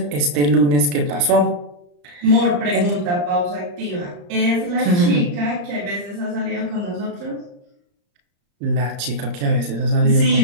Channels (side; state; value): left; late; 34 ms